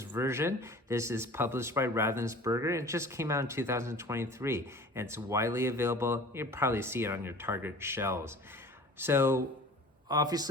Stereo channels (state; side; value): normal; both; correlation 0.43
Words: This is published by Ravensburger. It just came out in 2023, and it's widely available. You'll probably see it on your Target shelves. So